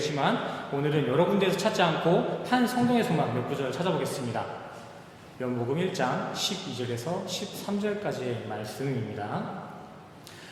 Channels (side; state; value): both; identical; correlation 1.00